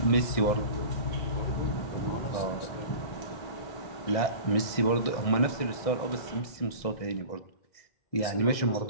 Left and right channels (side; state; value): right; late; 1.6 ms